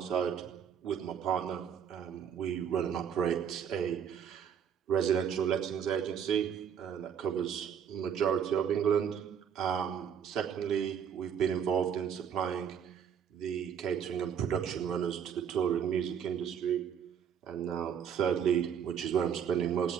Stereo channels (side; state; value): left; quieter; 8.1 dB